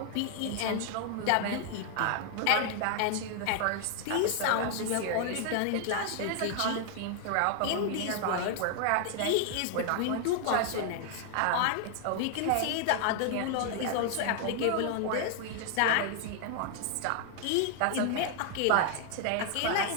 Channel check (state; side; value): different; both; correlation 0.00